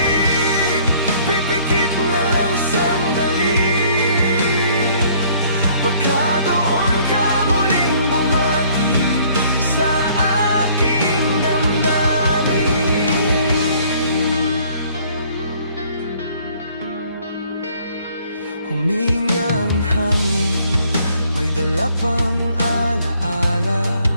pipikit na lang sandali, baka doon ka muling bumati sa aking damdamin. Huminga ang hangin, may dala pang alaala,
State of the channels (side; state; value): both; inverted; correlation -0.59